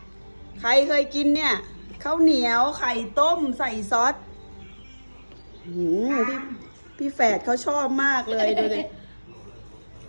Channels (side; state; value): both; inverted; correlation -1.00